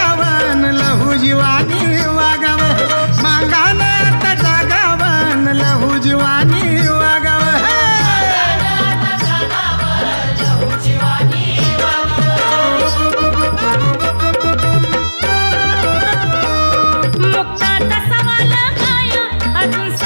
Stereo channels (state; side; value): inverted; both; correlation -1.00